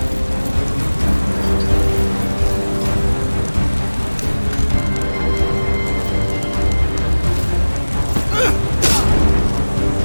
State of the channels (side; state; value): both; inverted; correlation -1.00